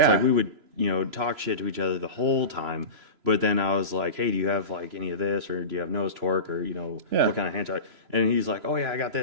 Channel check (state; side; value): late; left; 3.0 ms